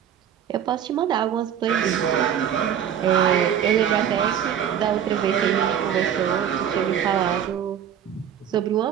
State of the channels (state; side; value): quieter; left; 9.3 dB